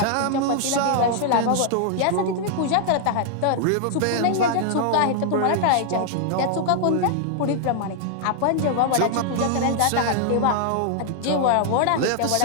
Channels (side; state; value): both; different; correlation 0.00